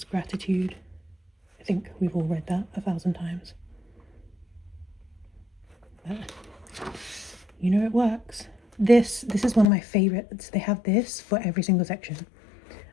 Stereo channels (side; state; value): right; drops out; at 9.7 s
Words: gratitude. I think we've all read that 1,000 times. But it works. This is one of my favorites. They have this for every single section,